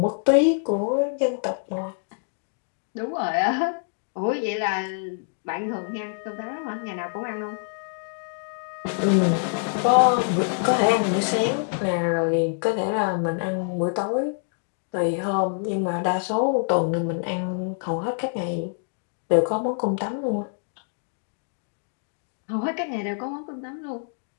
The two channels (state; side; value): silent; right; digital silence